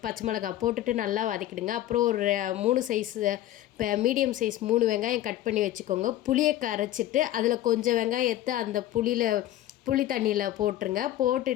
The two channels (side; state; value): right; quieter; 13.6 dB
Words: பச்சை மிளகாய் போட்டுட்டு நல்லா வதக்கிடுங்க. அப்புறம் ஒரு 3 சைஸ் இப்போ மீடியம் சைஸ் 3 வெங்காயம் கட் பண்ணி வச்சுக்கோங்க. புளியை கரைச்சிட்டு அதில் கொஞ்சம் வெங்காயத்தை அந்த புளி தண்ணியில் போட்டுருங்க.